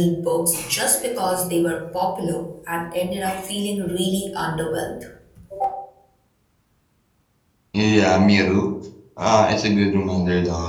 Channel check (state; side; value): identical; both; correlation 1.00